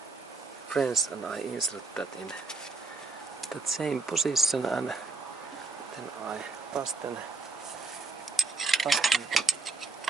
wrench and I insert that in that same position, and then I fasten the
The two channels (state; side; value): quieter; left; 4.0 dB